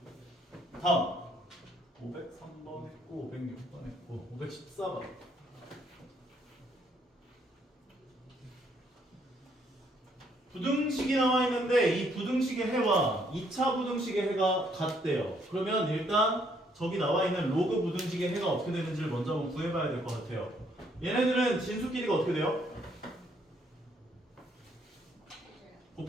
다음 503번 했고 506번 했고 514번. 부등식이 나와 있는데 이 부등식의 해와 2차 부등식의 해가 같대요. 그러면 일단 저기 나와 있는 로그 부등식의 해가 어떻게 되는지를 먼저 한번 구해봐야 될 것 같아요. 얘네들은 진수끼리가 어떻게 돼요?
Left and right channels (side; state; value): both; normal; correlation 0.68